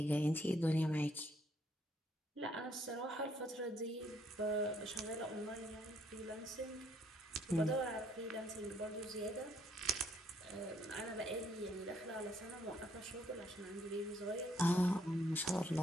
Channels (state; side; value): normal; both; correlation 0.69